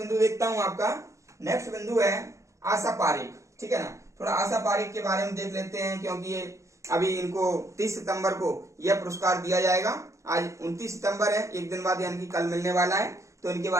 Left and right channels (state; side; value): late; left; 0.15 ms